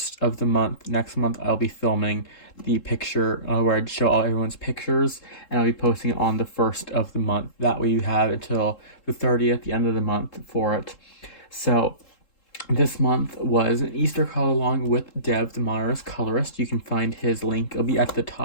of the month. Next month I'll be filming the picture where I show all everyone's pictures, and I'll be posting it on the 1st of the month. That way you have until the 30th, the end of the month, for it. So this month was an Easter color along with Dev, the Modernist Colorist. You can find his link. It'll be at the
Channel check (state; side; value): late; right; 3.7 ms